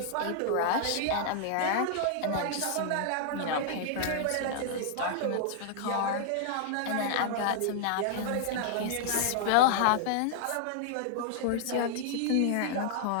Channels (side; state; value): both; different; correlation -0.01